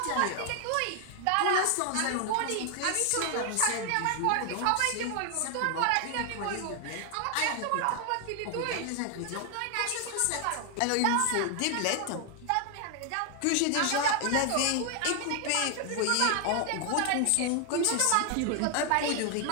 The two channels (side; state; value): both; different; correlation 0.00